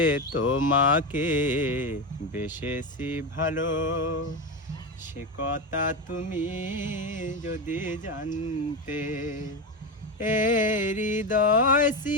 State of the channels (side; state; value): both; normal; correlation 0.15